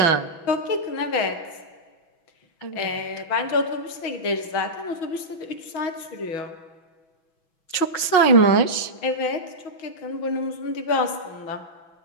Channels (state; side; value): late; right; 6.1 ms